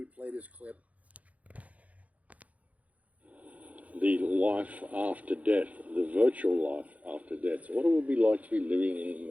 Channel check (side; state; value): left; late; 0.069 ms